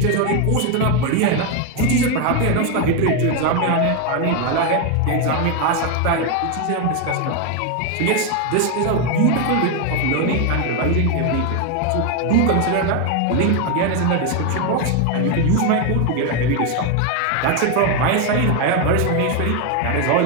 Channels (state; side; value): different; both; correlation 0.01